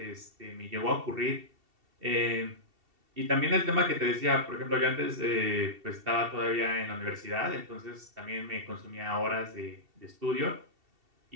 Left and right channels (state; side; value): late; left; 2.7 ms